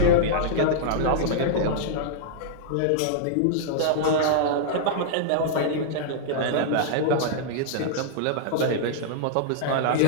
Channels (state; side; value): different; both; correlation -0.02